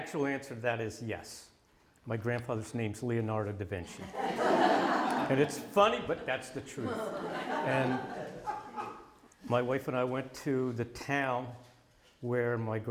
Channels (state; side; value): identical; both; correlation 1.00